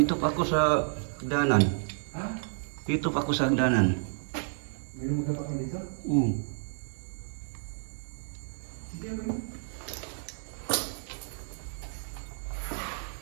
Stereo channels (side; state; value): left; silent; 57 dB below the other